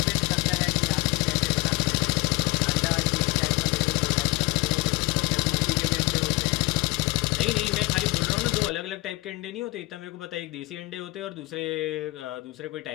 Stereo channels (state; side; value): quieter; right; 22.4 dB